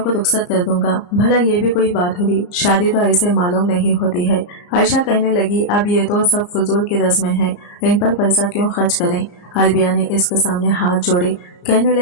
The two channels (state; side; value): late; right; 34 ms